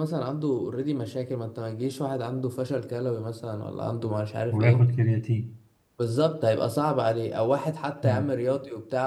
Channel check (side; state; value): both; identical; correlation 1.00